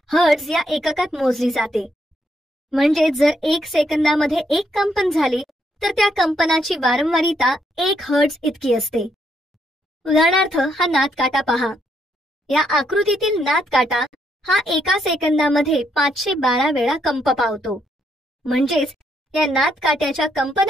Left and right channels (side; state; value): both; normal; correlation 0.75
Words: हर्ट्झ या एककात मोजली जाते. म्हणजे जर 1 सेकंदामध्ये एक कंपन झाले तर त्या कंपनाची वारंवारिता 1 हर्ट्झ इतकी असते. उदाहरणार्थ हा नादकाटा पहा. या आकृतीतील नादकाटा हा एका सेकंदामध्ये 512 वेळा कंप पावतो. म्हणजेच या नादकाट्याच्या